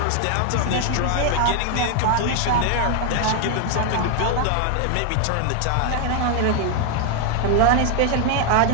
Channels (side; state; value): both; different; correlation 0.00